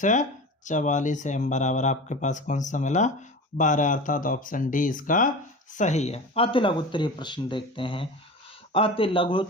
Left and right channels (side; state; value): both; normal; correlation 0.32